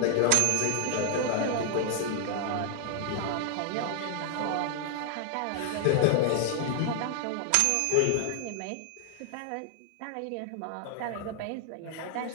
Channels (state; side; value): different; both; correlation 0.00